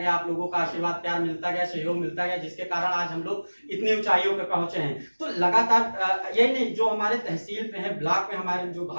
आप लोगों का आशीर्वाद प्यार मिलता गया, सहयोग मिलता गया, जिसके कारण आज हम लोग इतनी ऊंचाइयों पे पहुंचे हैं। तो लगातार यही नहीं, जो हमारे तहसील पे है, ब्लॉक में हमारे जो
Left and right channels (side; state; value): both; inverted; correlation -1.00